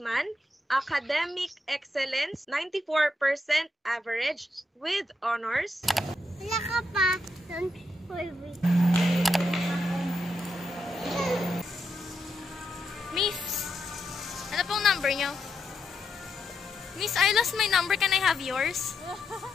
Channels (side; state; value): both; normal; correlation 0.82